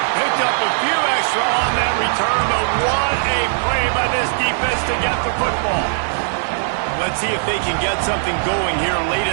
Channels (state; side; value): silent; left; digital silence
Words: Picked up a few extra on that return, but what a play by this defense to get the football. Let's see if they can get something going here late